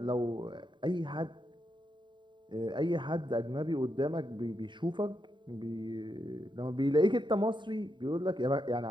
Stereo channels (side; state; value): left; late; 0.23 ms